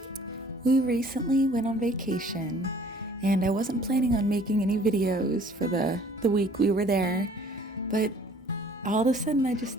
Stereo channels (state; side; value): normal; both; correlation 0.54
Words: We recently went on vacation, and I wasn't planning on making any videos for the week we were there, but all of a sudden I just